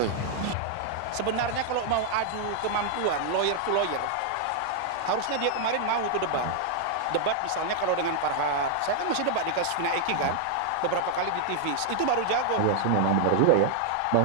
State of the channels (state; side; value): different; both; correlation 0.00